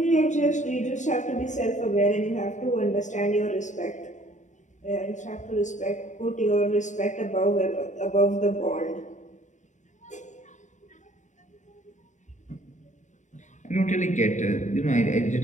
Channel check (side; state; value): right; late; 0.35 ms